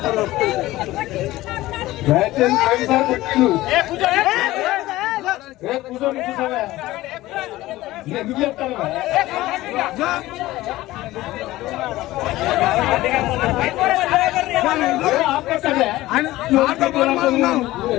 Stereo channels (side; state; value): right; quieter; 17.2 dB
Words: దయచేసి పోయినసారి కొట్టిండు. కూర్చొని కూర్చోవా, ఎందుకు చెప్తాను?